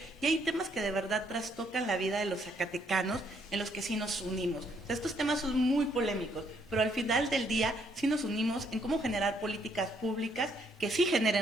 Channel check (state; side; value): normal; both; correlation 0.70